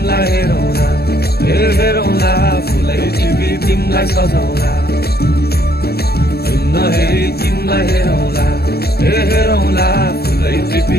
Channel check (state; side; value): late; right; 0.46 ms